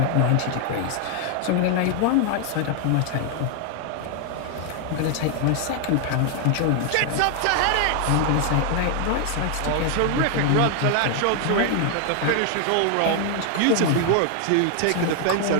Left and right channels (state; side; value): different; both; correlation 0.00